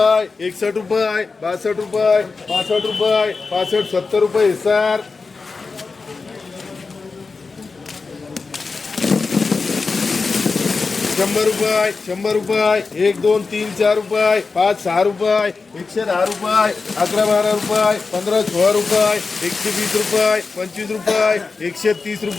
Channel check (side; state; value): right; quieter; 4.3 dB